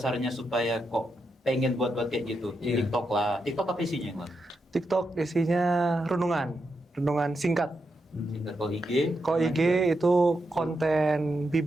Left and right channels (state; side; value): normal; both; correlation 0.85